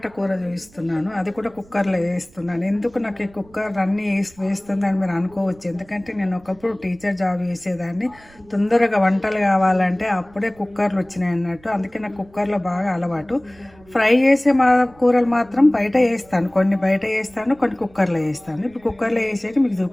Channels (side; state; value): right; noise; rumble, 27 dB below the sound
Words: కూర చూపిస్తున్నాను, అది కూడా కుక్కర్లో వేస్తున్నాను. ఎందుకు నాకు ఈ కుక్కర్ అన్నీ వేస్తుందని మీరు అనుకోవచ్చు. ఎందుకంటే నేను ఒకప్పుడు టీచర్ జాబ్ చేసేదాన్ని. తొందరగా వంటలు కావాలంటే అప్పుడే కుక్కర్లు వచ్చినాయి అన్నట్టు. అందుకే నాకు కుక్కర్లో బాగా అలవాటు. ఫ్రై చేసే కూరలు మాత్రం బయట వేస్తాను, కొన్ని బయట వేస్తాను, కొన్ని కుక్కర్లో వేస్తాను. ఇప్పుడు కుక్కర్లో వేసేది మీకు